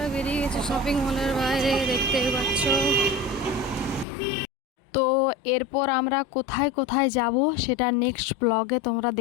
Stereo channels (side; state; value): right; drops out; at 4.0 s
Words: বেরিয়ে গেছি শপিং মলের বাইরে, দেখতেই পাচ্ছ। তো এরপর আমরা কোথায় কোথায় যাব সেটা নেক্সট ব্লগে তোমরা